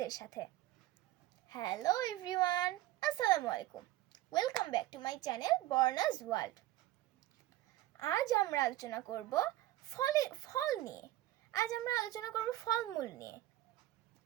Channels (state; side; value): quieter; left; 15.8 dB